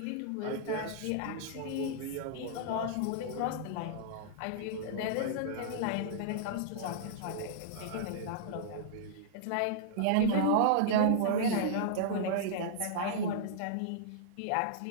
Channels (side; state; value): both; different; correlation -0.01